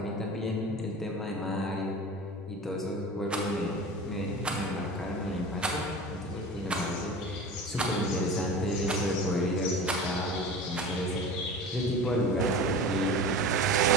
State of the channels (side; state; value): both; normal; correlation 0.34